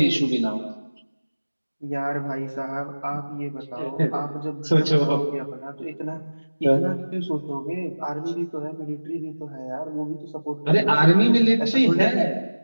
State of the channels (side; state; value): both; inverted; correlation -1.00